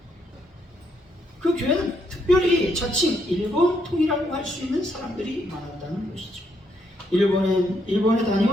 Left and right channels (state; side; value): normal; both; correlation 0.75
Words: 그 교회는 특별히 자칭 일본통이라고 할 수 있는 사람들이 많았다는 것이죠. 일본에